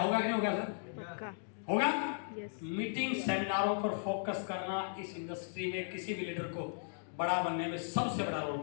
होगा कि नहीं होगा सर? पक्का होगा। यस। मीटिंग सेमिनारों पर फोकस करना इस इंडस्ट्री में किसी भी लीडर को बड़ा बनने में सबसे बड़ा रोल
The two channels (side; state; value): right; silent; digital silence